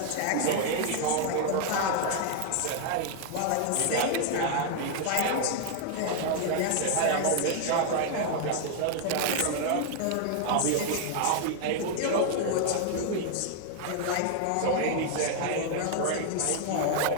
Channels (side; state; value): both; different; correlation 0.00